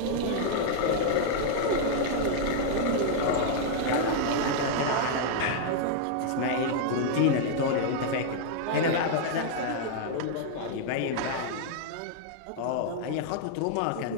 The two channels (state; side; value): different; both; correlation -0.01